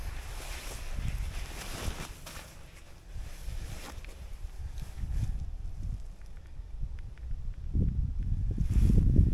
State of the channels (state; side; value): identical; both; correlation 1.00